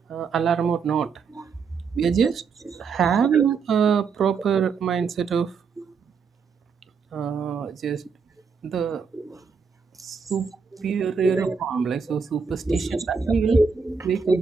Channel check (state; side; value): quieter; left; 5.6 dB